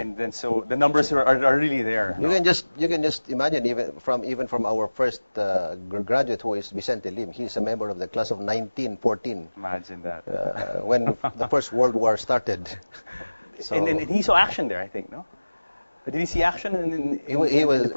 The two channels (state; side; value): inverted; both; correlation -1.00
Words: then so the numbers are really there. You can just imagine even from our first graduate, who is Vicente Lim. He's a member of the class of 1914. Imagine that. When the First World War started. So, and he saw action there, I think, no? Did he see action in the